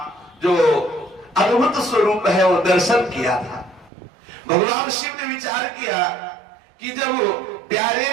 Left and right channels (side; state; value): left; drops out; at 3.9 s